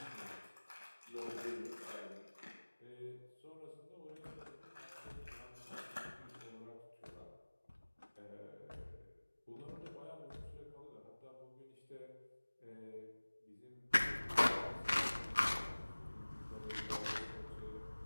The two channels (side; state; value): both; inverted; correlation -1.00